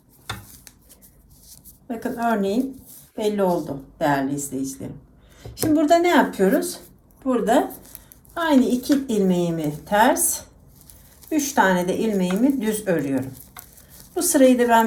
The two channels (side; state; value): both; identical; correlation 1.00